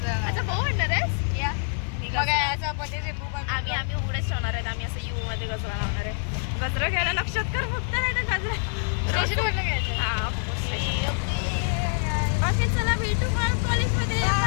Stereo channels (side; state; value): right; silent; 61 dB below the other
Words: अच्छा भाऊ म्हणणार आहेस. या बघा बघा याचा पतीचे बो आम्ही उघडेच ठेवणार आहेत. आम्ही असं यू मध्ये गजरा लावणार आहे. गजरा घ्यायला लक्षात कर फक्त. नाही तर गजरा स्टेशन घ्यायचं. हा ओके चला भेटू मग कॉलेजमध्ये.